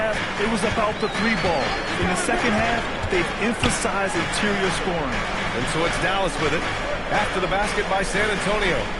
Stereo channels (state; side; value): identical; both; correlation 1.00